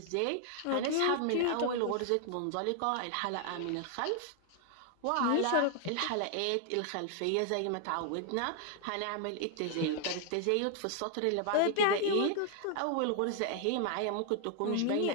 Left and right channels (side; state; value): both; different; correlation 0.00